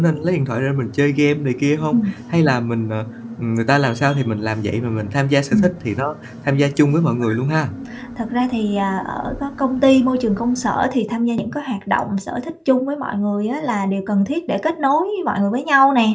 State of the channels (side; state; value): both; identical; correlation 1.00